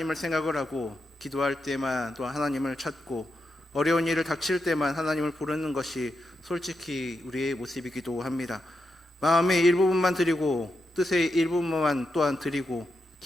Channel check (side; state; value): both; normal; correlation 0.85